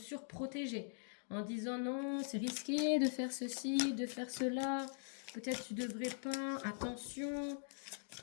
en disant non, c'est risqué de faire ceci, de faire cela, peut-être tu devrais pas, attention.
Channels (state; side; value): silent; right; digital silence